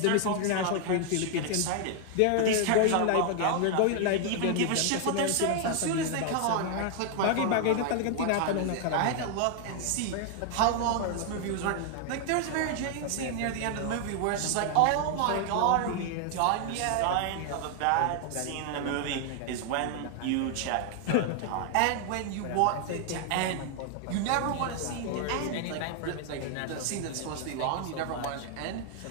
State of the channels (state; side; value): different; both; correlation 0.00